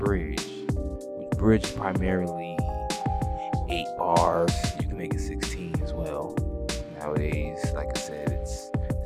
Which bridge is primarily 8 bars. You can make it 16 as well. Nowadays, like I said, it's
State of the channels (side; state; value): both; identical; correlation 1.00